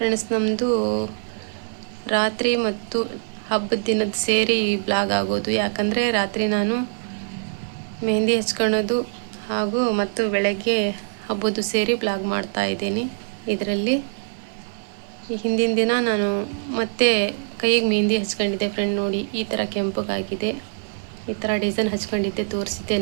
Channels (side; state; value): left; silent; digital silence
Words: ನಮ್ಮದು ರಾತ್ರಿ ಮತ್ತು ಹಬ್ಬದ ದಿನದ ಸೇರಿ ಬ್ಲಾಗ್ ಆಗೋದು. ಯಾಕಂದರೆ ರಾತ್ರಿ ನಾನು ಮೆಹಂದಿ ಹಚ್ಕೊಳ್ಳೋದು ಮತ್ತು ಬೆಳಗ್ಗೆ ಹಬ್ಬದ್ದು ಸೇರಿ ಬ್ಲಾಗ್ ಮಾಡ್ತಾ ಇದ್ದೀನಿ. ಇದರಲ್ಲಿ ಹಿಂದಿನ ದಿನ ನಾನು ಮತ್ತೆ ಕೈಗೆ ಮೆಹಂದಿ ಹಚ್ಕೊಂಡಿದ್ದೆ ಫ್ರೆಂಡ್. ನೋಡಿ, ಈ ಥರ ಕೆಂಪಗಾಗಿದೆ, ಈ ಥರ ಡಿಸೈನ್ ಹಚ್ಕೊಂಡಿದ್ದೆ, ತೋರಿಸಿದ್ದೆ